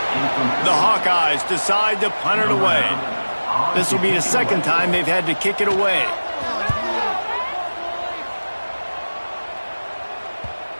The Hawkeyes decide to punt it away. This will be the 2nd time they've had to kick it away.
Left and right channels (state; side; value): inverted; both; correlation -1.00